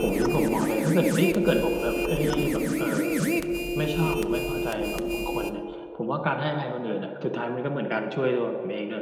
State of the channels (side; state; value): both; identical; correlation 1.00